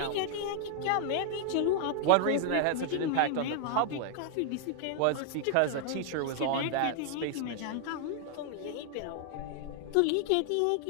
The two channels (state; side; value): different; both; correlation 0.00